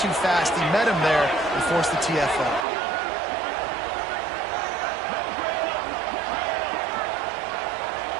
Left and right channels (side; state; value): left; drops out; at 2.7 s